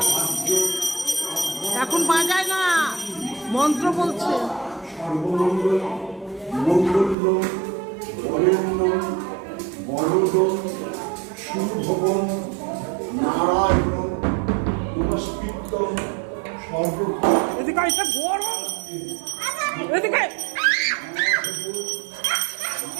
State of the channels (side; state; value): left; drops out; at 7.2 s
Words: এখন বাজায় না, মন্ত্র বলছে। সর্বমঙ্গল মঙ্গল বরেণ্যম বরদম শুভবন নারায়ণ নমস্কৃত্যম সর্ব। এদিকে এটা গরম, এদিকে